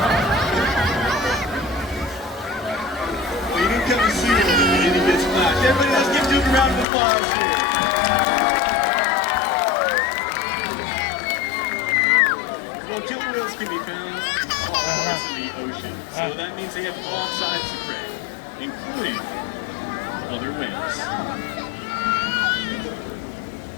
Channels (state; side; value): drops out; right; at 6.9 s